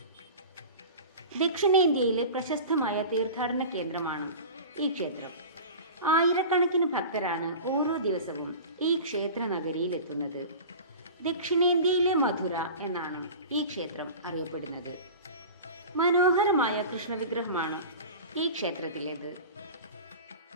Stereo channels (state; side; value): inverted; both; correlation -0.34